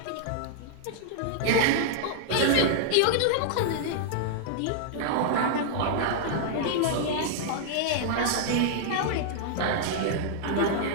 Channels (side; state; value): both; different; correlation -0.01